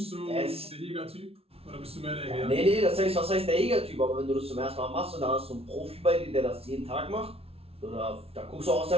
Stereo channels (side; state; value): left; late; 0.28 ms